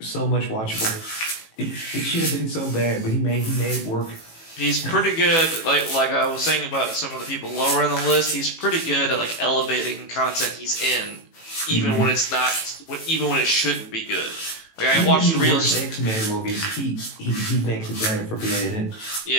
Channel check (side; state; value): right; late; 18 ms